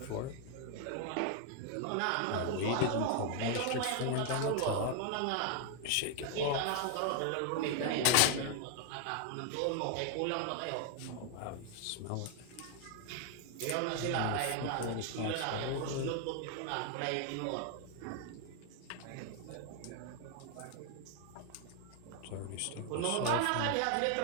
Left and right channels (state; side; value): different; both; correlation 0.00